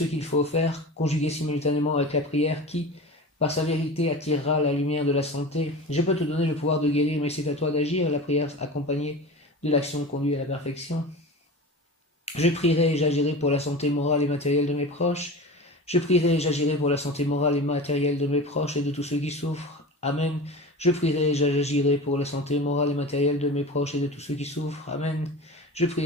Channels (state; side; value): normal; both; correlation 0.32